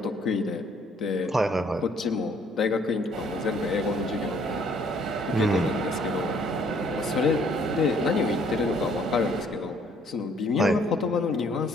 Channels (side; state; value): both; normal; correlation 0.62